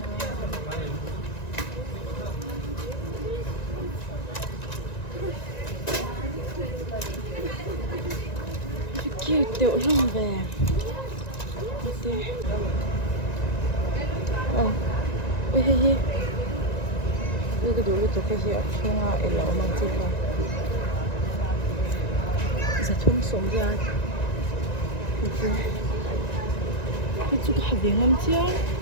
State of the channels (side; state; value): right; late; 1.9 ms